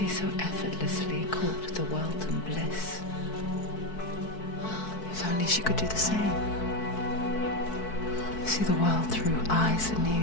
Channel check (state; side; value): late; right; 4.6 ms